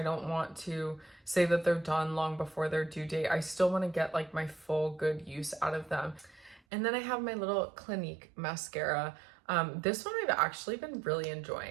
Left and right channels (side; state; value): left; drops out; at 6.6 s